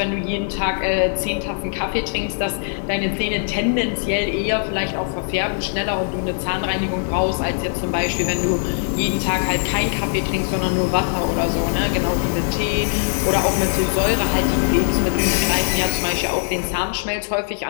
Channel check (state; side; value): silent; right; digital silence